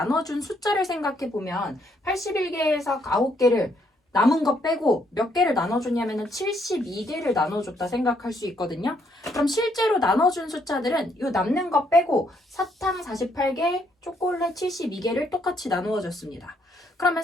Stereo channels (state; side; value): normal; both; correlation 0.72